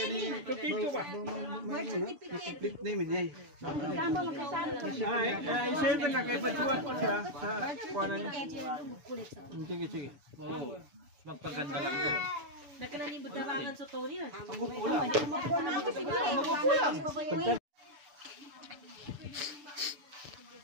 ni complete name niya. Isa na kay Bajuan ko siya sa kuana niya. Sige, sige. Oo. Magpaganda lang doon. Nagkalanibot na bangan sa Tony na.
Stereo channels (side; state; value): left; late; 6.9 ms